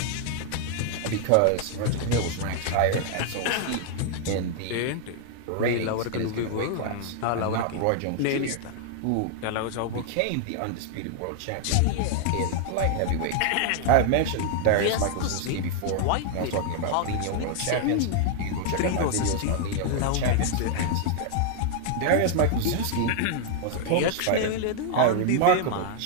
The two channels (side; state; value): both; different; correlation 0.00